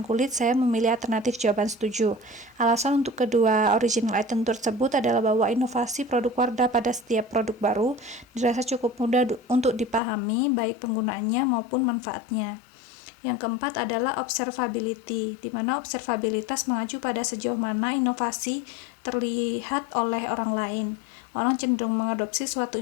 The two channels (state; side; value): drops out; right; at 10.0 s